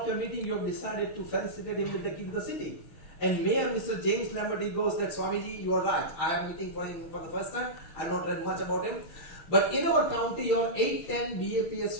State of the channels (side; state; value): right; late; 6.2 ms